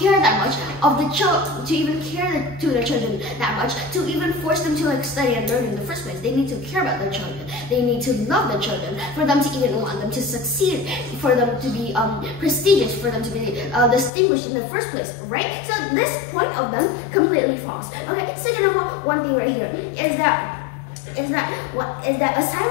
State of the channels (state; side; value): drops out; right; at 14.1 s